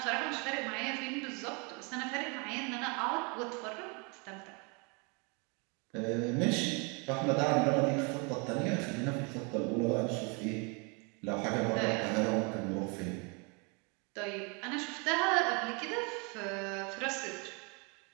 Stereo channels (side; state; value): left; quieter; 32.3 dB